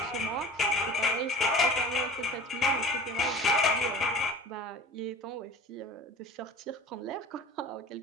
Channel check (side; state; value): both; normal; correlation 0.40